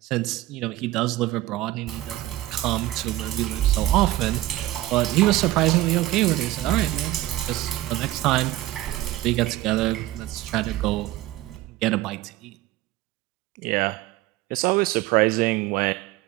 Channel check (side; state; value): left; quieter; 16.1 dB